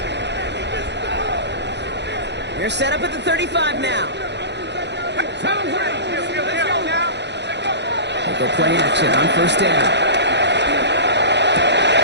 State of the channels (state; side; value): late; left; 0.50 ms